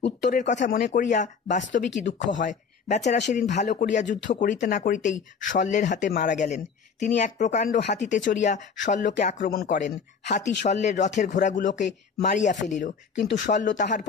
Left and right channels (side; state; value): right; quieter; 5.9 dB